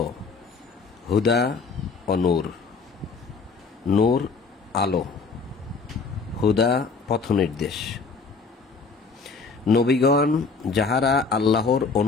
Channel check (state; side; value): quieter; right; 4.7 dB